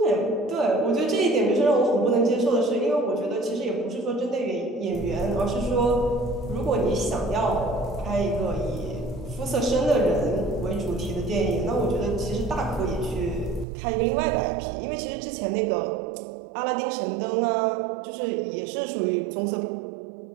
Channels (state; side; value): drops out; left; at 13.7 s